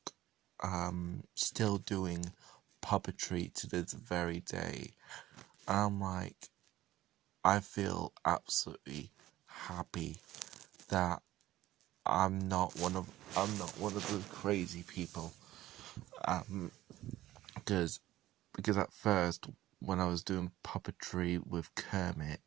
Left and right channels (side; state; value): left; quieter; 15.1 dB